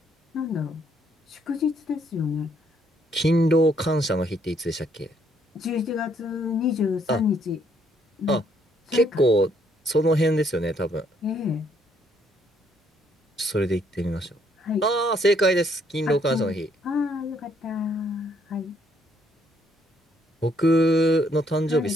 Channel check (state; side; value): normal; both; correlation 0.69